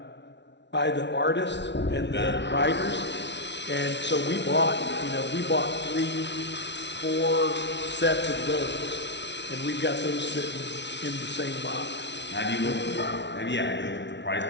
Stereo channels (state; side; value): late; right; 0.51 ms